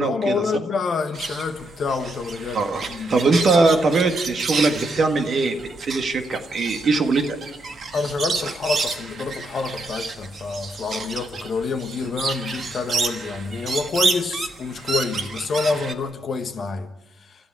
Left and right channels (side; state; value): both; normal; correlation 0.77